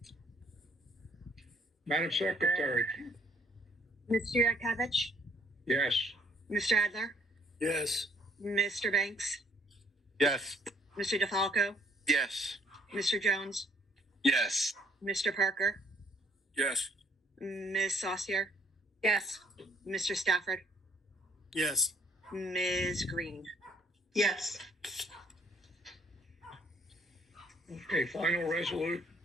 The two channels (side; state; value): both; normal; correlation 0.63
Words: Madam Secretary? Mr. Yurkovich, Yes. Mr. Adler, Yes. Mr. Banks, Yes. Mr. DeFalco, Yes. Mr. Jones, Yes. Mr. Parker, Yes. Ms. Saucier, Yes. Mr. Stafford, Yes. Ms. Green. Yes. Okay, resolution